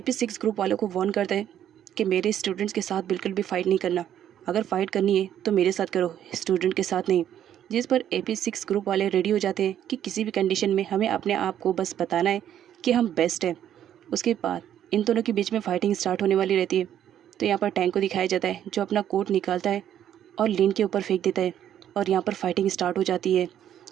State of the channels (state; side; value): quieter; left; 10.5 dB